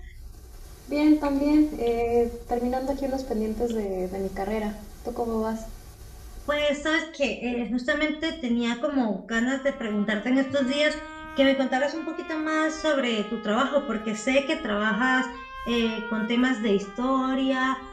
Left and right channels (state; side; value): identical; both; correlation 1.00